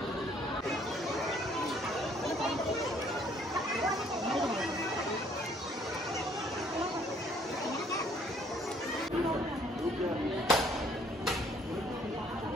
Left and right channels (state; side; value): normal; both; correlation 0.62